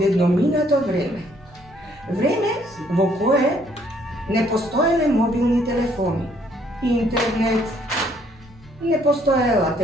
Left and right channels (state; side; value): normal; both; correlation 0.66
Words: vreme. Vreme v koje ne postojale mobilni telefoni, internet, ne postojala